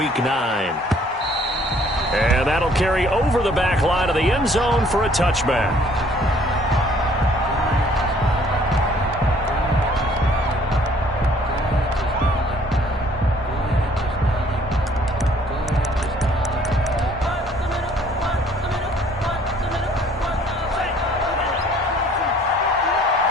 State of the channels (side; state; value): both; normal; correlation 0.59